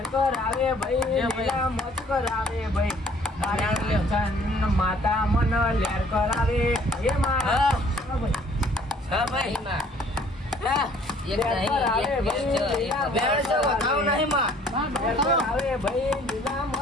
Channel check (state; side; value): normal; both; correlation 0.57